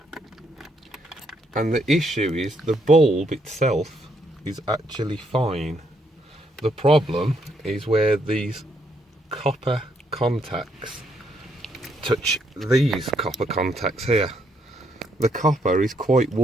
and the issue is the bulb itself is actually fine. The problem is where these copper contacts touch these copper contacts here. The copper is quite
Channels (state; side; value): normal; both; correlation 0.74